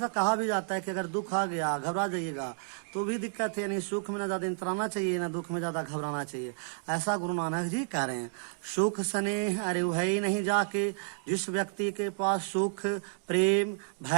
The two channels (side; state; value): left; silent; digital silence